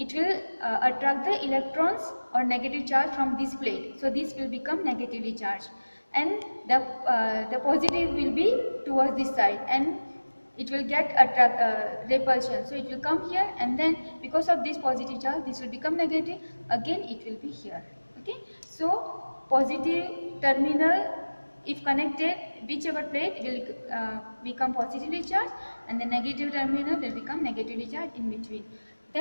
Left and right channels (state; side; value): inverted; both; correlation -1.00